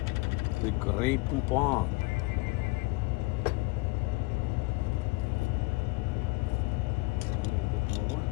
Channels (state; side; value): quieter; right; 23.9 dB